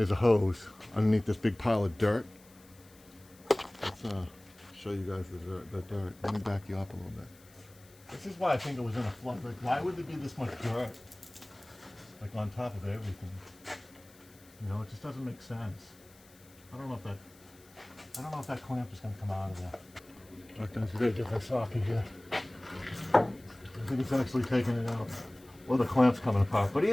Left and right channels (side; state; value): left; noise; hiss, 26 dB below the sound